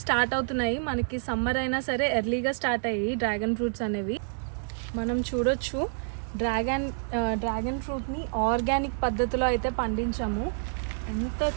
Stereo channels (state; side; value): silent; left; 59 dB below the other